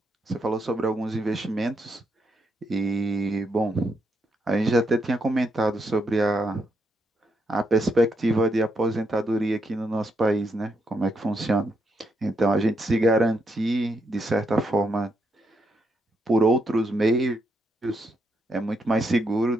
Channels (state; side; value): normal; both; correlation 0.79